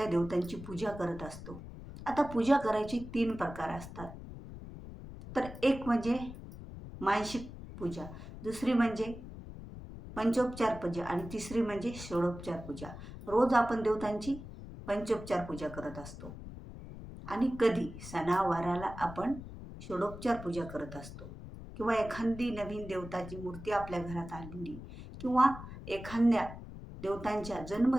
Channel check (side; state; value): left; noise; rumble, 12 dB below the sound